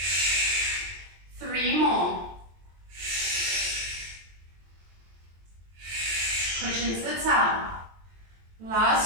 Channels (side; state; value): left; late; 23 ms